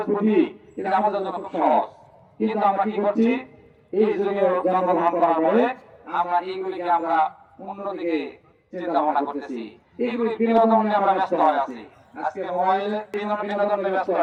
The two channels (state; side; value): identical; both; correlation 1.00